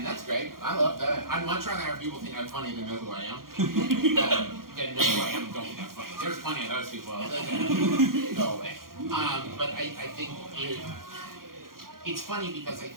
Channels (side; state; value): left; late; 0.92 ms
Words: that's great. I love that. I'd much rather have people think I'm funny than know who I am. Than know who I am and don't think I'm funny. There's plenty of those people. Go away. But I think it's funny because I